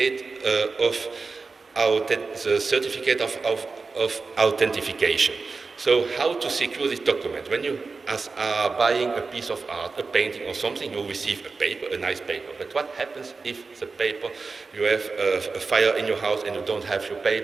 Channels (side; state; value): left; quieter; 4.2 dB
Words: of authentication. So how to secure this document? When you are buying a piece of art, a painting or something, you receive a paper, a nice paper. But what happens if the paper, you have a fire in your house and you don't have your